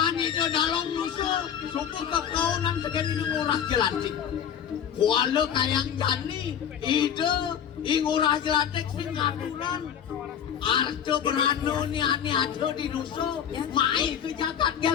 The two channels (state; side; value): quieter; right; 8.8 dB